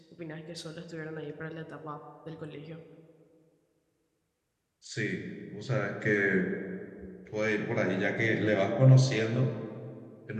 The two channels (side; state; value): both; identical; correlation 1.00